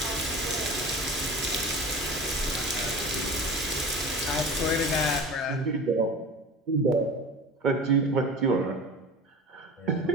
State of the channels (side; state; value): both; normal; correlation 0.35